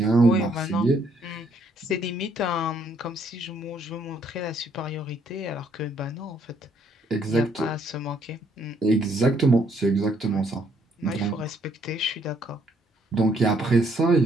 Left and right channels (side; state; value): both; normal; correlation 0.68